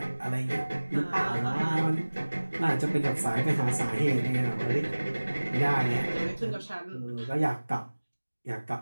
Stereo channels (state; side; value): inverted; both; correlation -1.00